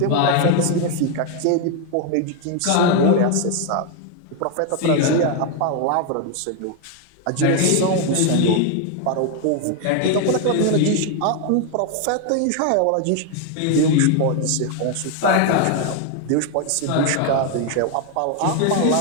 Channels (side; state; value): both; different; correlation 0.01